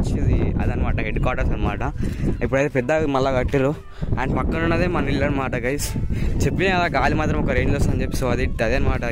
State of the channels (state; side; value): identical; both; correlation 1.00